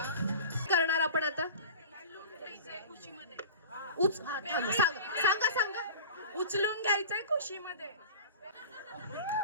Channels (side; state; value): both; inverted; correlation -0.37